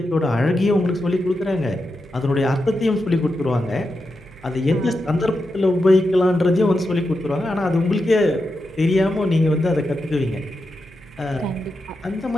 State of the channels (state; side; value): noise; right; hum, 24 dB below the sound